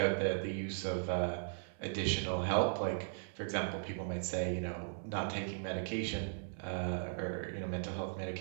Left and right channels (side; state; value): left; silent; 53 dB below the other